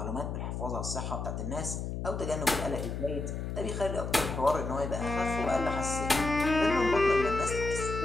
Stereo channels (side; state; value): left; noise; hum, 4 dB below the sound